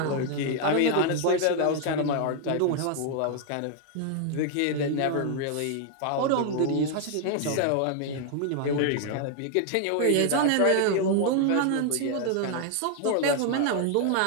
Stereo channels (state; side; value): different; both; correlation 0.00